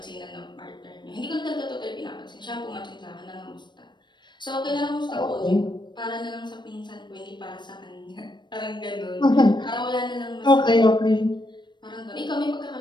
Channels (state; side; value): late; right; 0.22 ms